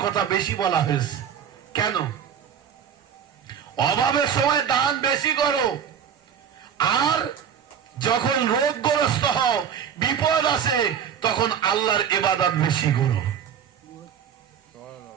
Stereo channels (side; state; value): left; quieter; 8.2 dB